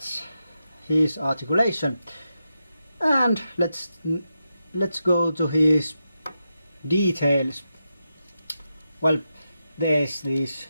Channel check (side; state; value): both; inverted; correlation -0.88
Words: his articulation. And let's go to his details. Well, there's these